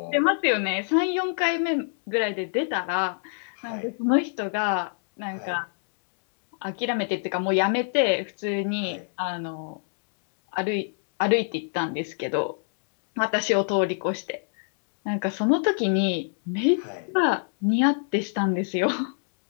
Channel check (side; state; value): right; silent; digital silence